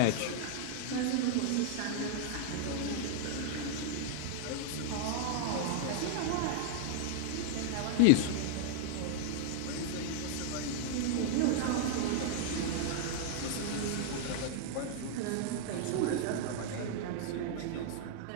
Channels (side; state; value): both; different; correlation -0.01